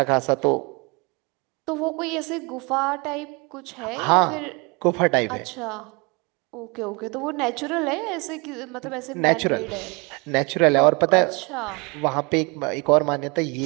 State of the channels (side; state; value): left; quieter; 28.8 dB